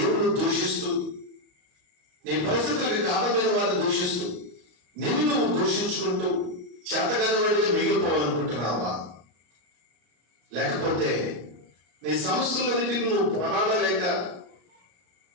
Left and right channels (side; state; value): left; late; 34 ms